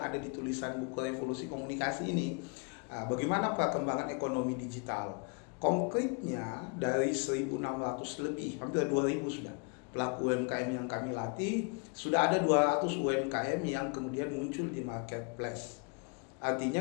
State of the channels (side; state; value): right; quieter; 35.7 dB